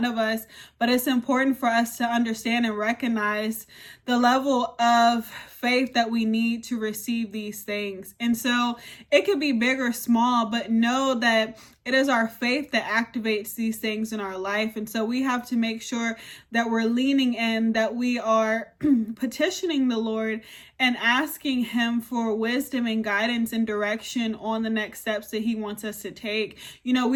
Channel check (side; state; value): both; identical; correlation 1.00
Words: of us, but it's important for us to understand and recognize the level of faith that we need to receive these things. And so it could be big or small, but know that it is our faith that activates these things in our life. And so we have to make sure that we're leaning in, that we are petitioning the Lord and asking Him for wisdom and guidance and direction on the next steps that He wants us to take. We